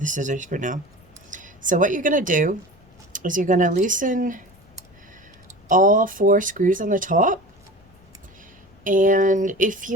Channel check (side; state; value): left; noise; rumble, 29 dB below the sound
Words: scissors for now. So what you're gonna do is you're gonna loosen all 4 screws on the top. And if